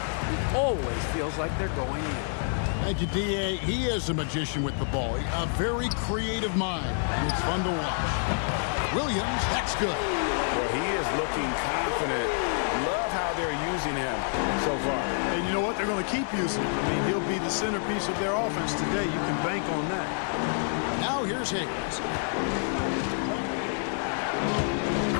always feels like they're going in. Thank you, D.A. He is a magician with the ball. A very creative mind, and it's fun to watch. Williams, that's good. Well, he is looking confident. Love how they're using him so far. And you know what? They're going to keep using him. I mean, he'll be the centerpiece of their offense today. You can bank on that. Now here's Hayes.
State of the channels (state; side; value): silent; right; 59 dB below the other